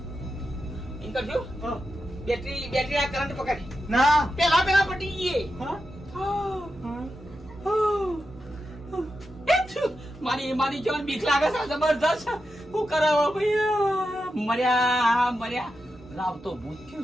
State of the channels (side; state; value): both; normal; correlation 0.89